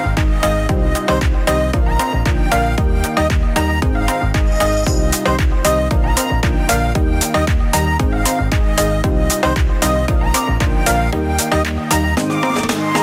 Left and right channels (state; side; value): identical; both; correlation 1.00